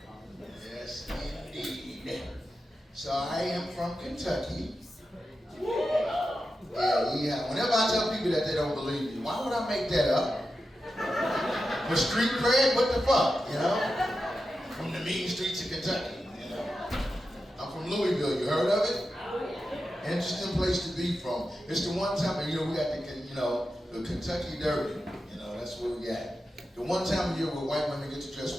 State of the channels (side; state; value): both; normal; correlation 0.90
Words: Yes, indeed. So I am from Kentucky. Yeah. Whenever I tell people that they don't believe me, why would I make that up? For street cred, what the fuck, you know? From the mean streets of Kentucky, you know? I'm from Louisville, you heard of it? Interesting place to be from. It's the one time, you know, we got the Kentucky Derby, you know, that's what we got. The one time of year where white women get to dress